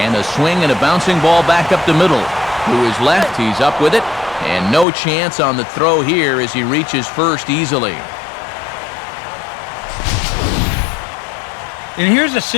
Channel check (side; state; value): right; drops out; at 4.9 s